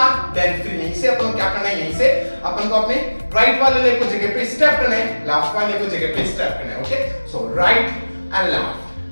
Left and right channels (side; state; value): both; inverted; correlation -1.00